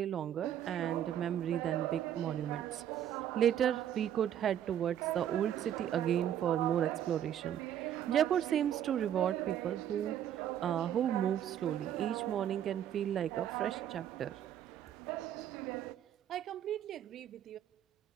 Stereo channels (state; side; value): quieter; left; 10.3 dB